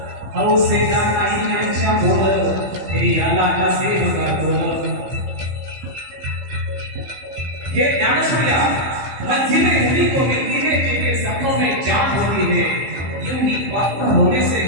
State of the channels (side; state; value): left; late; 15 ms